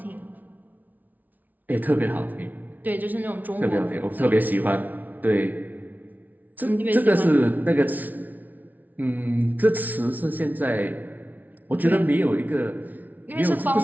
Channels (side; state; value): left; late; 0.078 ms